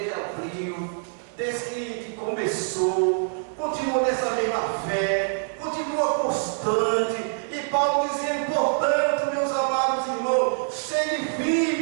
abriu, desde que começou, continua nessa mesma fé, continua constante. E Paulo dizendo: portanto, meus amados irmãos, sede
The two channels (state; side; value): silent; left; 62 dB below the other